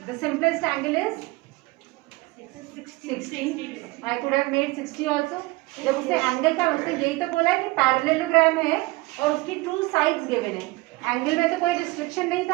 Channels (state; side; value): quieter; left; 22.3 dB